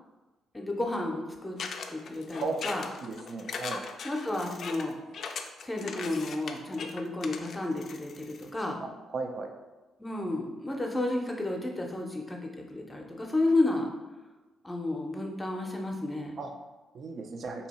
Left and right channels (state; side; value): normal; both; correlation 0.87